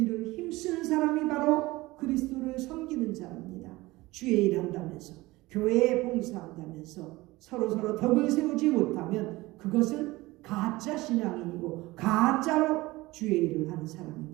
힘쓰는 사람이 바로 그리스도를 섬기는 자입니다. 주의 일 한다면서, 교회에 봉사한다면서 서로 덕을 세우지 못하면 그것은 가짜 신앙인이고 가짜로 주의 일을 하는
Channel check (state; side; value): quieter; left; 20.1 dB